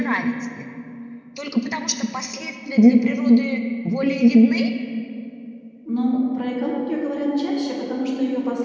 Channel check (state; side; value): identical; both; correlation 1.00